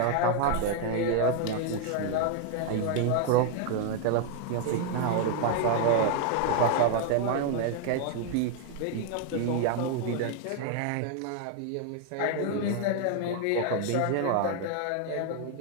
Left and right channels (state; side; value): different; both; correlation 0.00